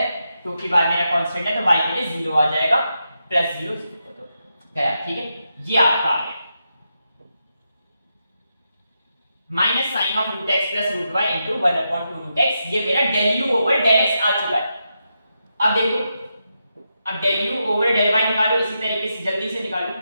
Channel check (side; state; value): both; inverted; correlation -0.86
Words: क्योंकि y मेरा कांस्टेंट है तो y के लिए 0 आ जाएगा, प्लस 0 तो गया, ठीक है। ये आपका आ गया minus sine of root x plus root y into 1/2 root x. ये मेरा del u over del x आ चुका है। अब देखो अब del u over del y निकालो, इसी तरीके से जल्दी से निकालो,